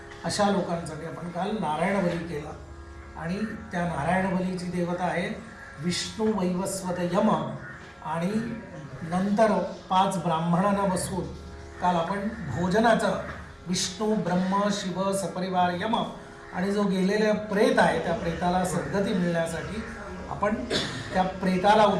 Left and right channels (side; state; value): both; identical; correlation 1.00